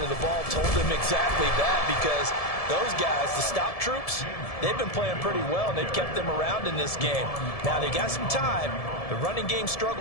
of the ball told them exactly that, because those guys, the stop troops, they've been playing pretty well, and they've kept them around in this game. Now, they got some time. The running game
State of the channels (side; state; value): right; late; 1.7 ms